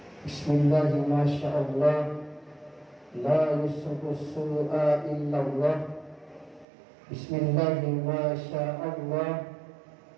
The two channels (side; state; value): left; drops out; at 6.7 s